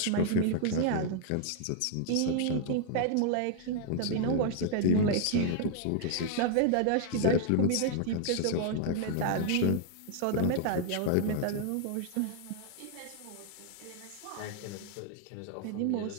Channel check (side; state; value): both; different; correlation 0.00